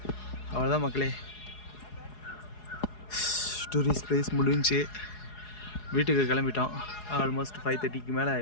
அவ்வளோதான் மக்களே, டூரிஸ்ட் பிளேஸ் முடிஞ்சு வீட்டுக்கு கிளம்பிட்டோம். ஆல்மோஸ்ட் 5:30க்கு மேலே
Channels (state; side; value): late; right; 4.8 ms